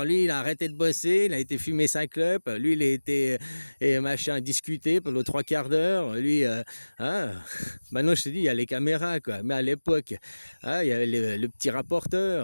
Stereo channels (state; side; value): inverted; both; correlation -1.00